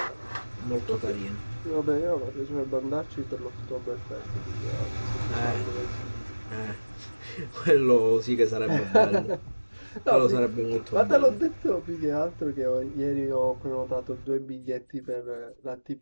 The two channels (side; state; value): both; inverted; correlation -1.00